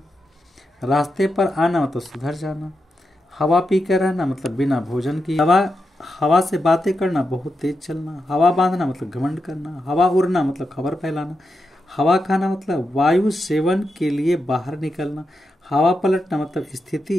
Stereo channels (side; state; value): both; normal; correlation 0.87